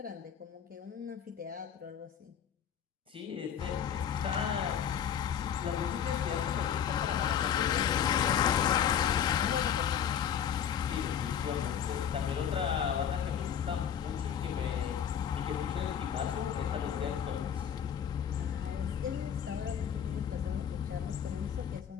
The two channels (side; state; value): right; quieter; 8.6 dB